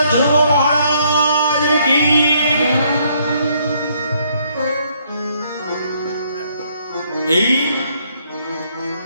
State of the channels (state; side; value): inverted; both; correlation -0.68